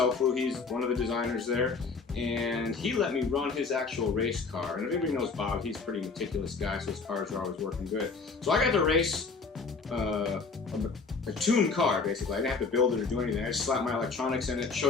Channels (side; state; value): right; quieter; 4.6 dB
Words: he's one of the designers there, and he let me run his actual race car. And if anybody knows Bob, he's a pretty meticulous guy, so his cars are always working good. So I got to race a tuned car, basically. I didn't have to build it or do anything. I just slapped my electronics in it,